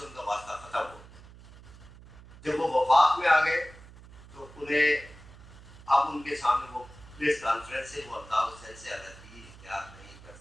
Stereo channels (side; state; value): right; noise; hum, 20 dB below the sound